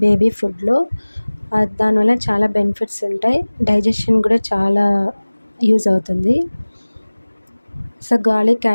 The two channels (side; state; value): both; inverted; correlation -1.00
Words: బేబీ ఫుడ్లో. దానివల్ల చాలా బెనిఫిట్స్ ఉంటాయి, డైజెషన్ కూడా చాలా యూజ్ అవుతుంది. సో గార్లిక్